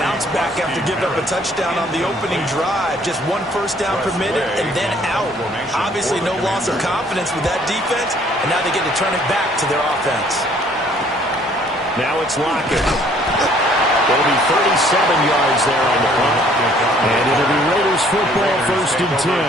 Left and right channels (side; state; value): both; normal; correlation 0.60